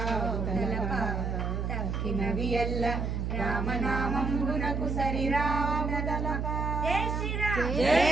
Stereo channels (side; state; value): right; noise; hum, 1 dB below the sound